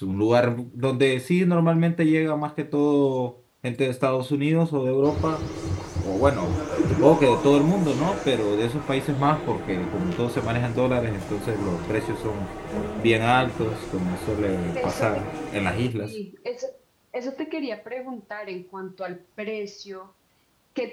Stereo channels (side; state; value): both; identical; correlation 1.00